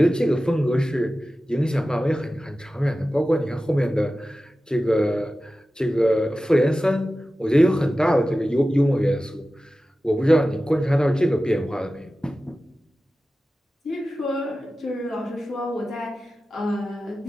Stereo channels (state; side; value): normal; both; correlation 0.95